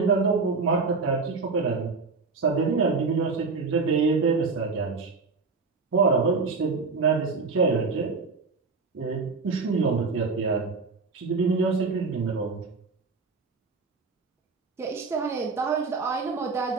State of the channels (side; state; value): left; quieter; 4.3 dB